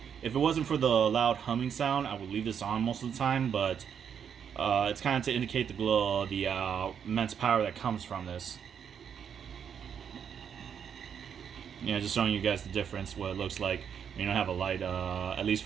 it wasn't for the loud humming sound, I would leave this on most of the time, but it's kind of to indicate the glow, the immense power that comes from this. Just showing you guys the difference, what it looks like when you don't have a light, at least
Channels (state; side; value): quieter; left; 7.8 dB